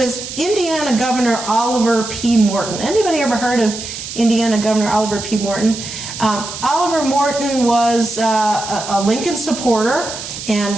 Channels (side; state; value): right; noise; hiss, 9 dB below the sound